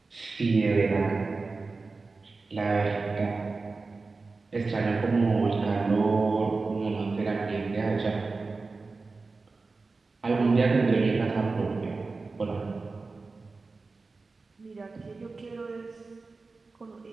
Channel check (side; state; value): left; quieter; 3.9 dB